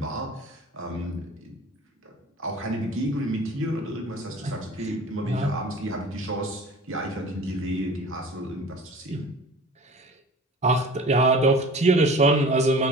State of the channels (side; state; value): both; normal; correlation 0.42